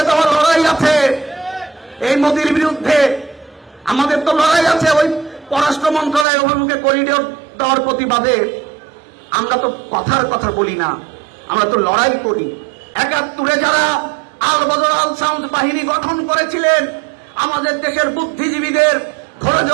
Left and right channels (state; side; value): drops out; left; at 6.2 s